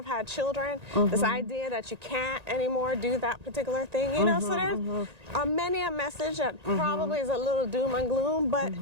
had children, this idea that you can't anymore do that particular thing, so there's many a message that probably is a little doom and gloom, but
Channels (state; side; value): late; left; 1.9 ms